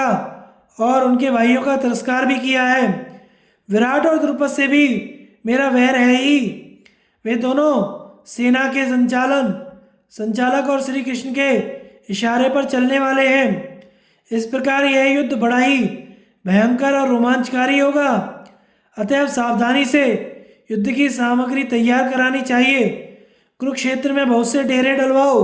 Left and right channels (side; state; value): both; identical; correlation 1.00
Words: और उनके भाइयों का तिरस्कार भी किया है। विराट और द्रुपद से भी मेरा वैर है ही। वे दोनों सेना के संचालक और श्री कृष्ण के इशारे पर चलने वाले हैं। इस प्रकार यह युद्ध बड़ा ही भयंकर और रोमांचकारी होगा। अतएव सावधानी से युद्ध की सामग्री तैयार करानी चाहिए। कुरुक्षेत्र में बहुत से डेरे